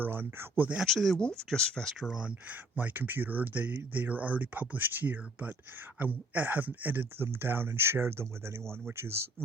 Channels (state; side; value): normal; both; correlation 0.58